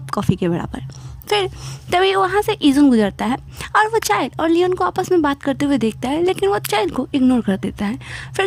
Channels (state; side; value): identical; both; correlation 1.00